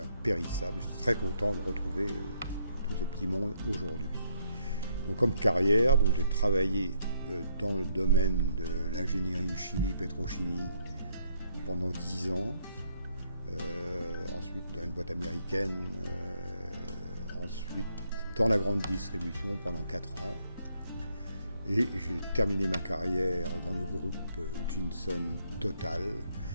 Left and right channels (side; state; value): both; inverted; correlation -0.71